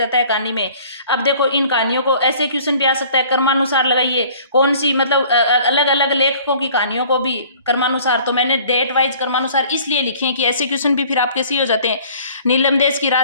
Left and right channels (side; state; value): both; inverted; correlation -0.51